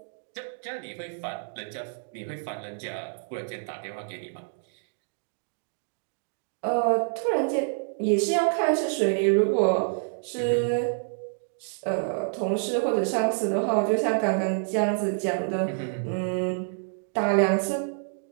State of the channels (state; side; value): silent; left; digital silence